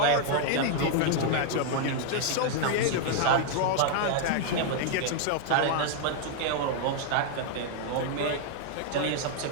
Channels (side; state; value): both; different; correlation 0.00